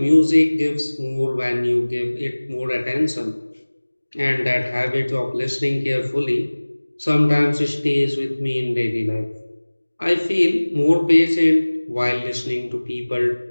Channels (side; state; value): both; inverted; correlation -1.00